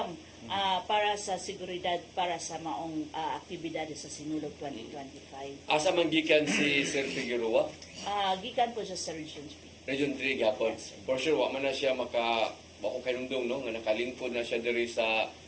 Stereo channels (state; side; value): identical; both; correlation 1.00